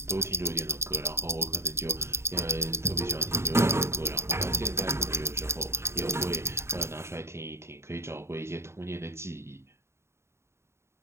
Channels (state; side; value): late; left; 0.13 ms